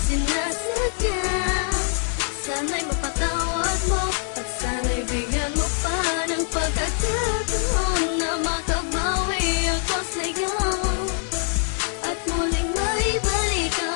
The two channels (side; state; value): right; silent; 57 dB below the other